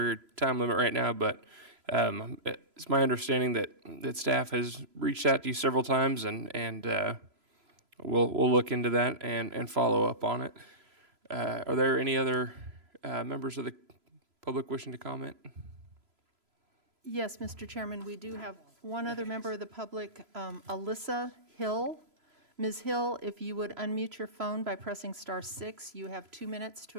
your time limit right now, but it's my understanding that staff has reached out to you several times, and we'll look into that and follow up on it. Are there any other members of the public wishing to comment? Yes, Mr. Chairman, we do have one other member of the public, Alyssa Hill. Ms. Hill, if you would unmute your phone by pressing *6, you have 2 minutes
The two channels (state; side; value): late; left; 3.0 ms